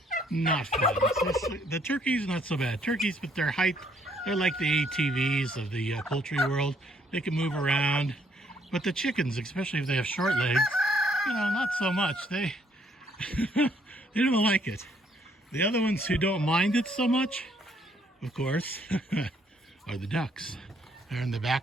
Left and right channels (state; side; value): normal; both; correlation 0.67